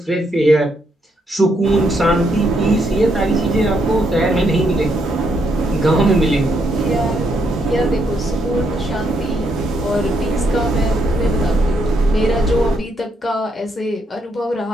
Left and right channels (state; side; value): normal; both; correlation 0.76